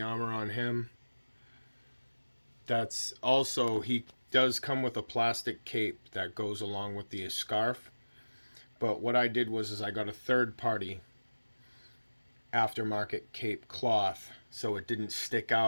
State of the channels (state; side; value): inverted; both; correlation -1.00